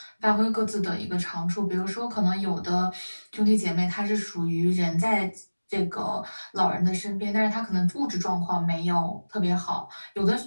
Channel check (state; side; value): inverted; both; correlation -1.00